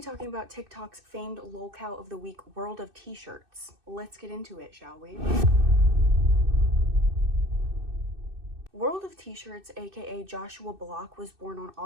talking about TikTok's famed lolcow of the week, World of T-shirts. Let's get into it, shall we? World of T-shirts, aka Joshua Block, was born on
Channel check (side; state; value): left; late; 2.6 ms